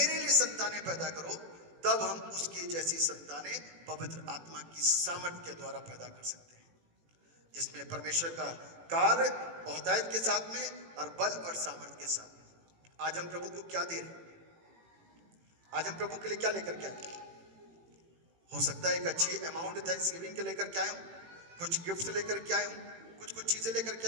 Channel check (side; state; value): left; late; 18 ms